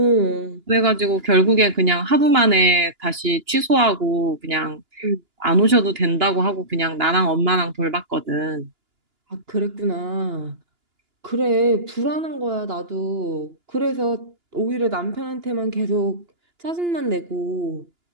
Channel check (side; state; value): left; late; 2.9 ms